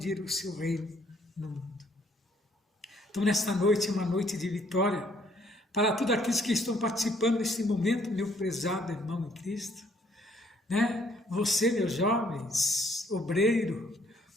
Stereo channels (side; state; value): both; normal; correlation 0.65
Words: o seu reino no mundo. Então, nesta noite, é uma noite de vitória para todos aqueles que estão participando nesse momento, meu prezado irmão em Cristo. Você, meus jovens, obreiro,